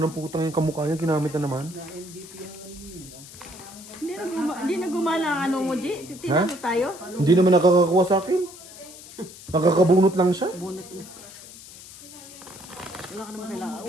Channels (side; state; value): left; noise; hiss, 17 dB below the sound